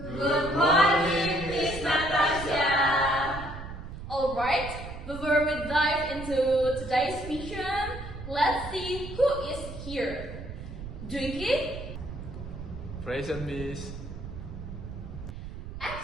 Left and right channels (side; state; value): right; noise; rumble, 10 dB below the sound